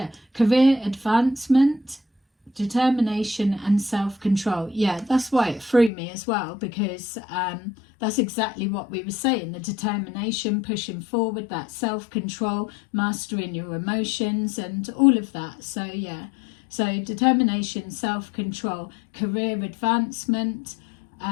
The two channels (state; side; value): drops out; right; at 5.9 s